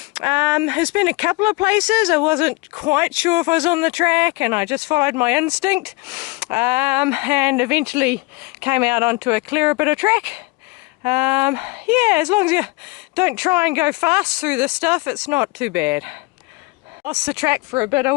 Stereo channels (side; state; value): right; quieter; 24.6 dB